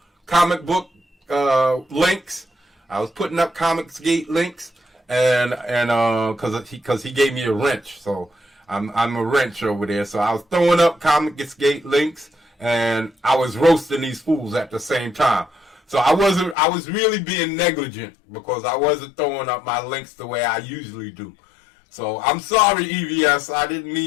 book links. I was putting up Comicsgate links, and because he gave me a wrench, so I'm a wrench over there. So I was throwing up Comicsgate links, and I was roasting these fools at the same time. So I was really being negligent because I wasn't throwing up my links the way I usually do. So I'm sorry, EVS. I didn't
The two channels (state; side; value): drops out; right; at 16.6 s